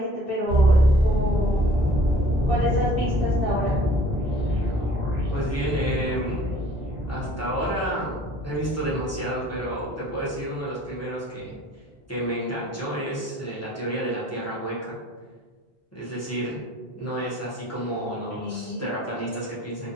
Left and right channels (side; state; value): both; normal; correlation 0.52